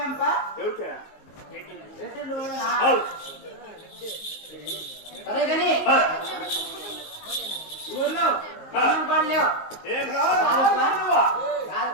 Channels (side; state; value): right; late; 19 ms